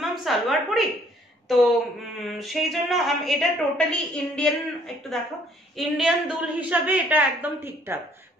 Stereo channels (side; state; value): both; normal; correlation 0.62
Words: সালোয়ার পরি, তো সেই জন্য এটা টোটালি ইন্ডিয়ান, একটু দেখো, ইন্ডিয়ান দুল হিসাবে এটা একদম ঠিকঠাক,